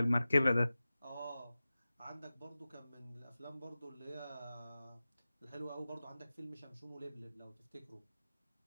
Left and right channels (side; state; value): both; inverted; correlation -0.95